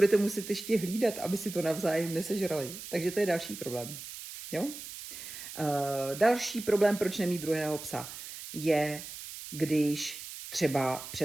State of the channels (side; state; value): right; noise; hiss, 11 dB below the sound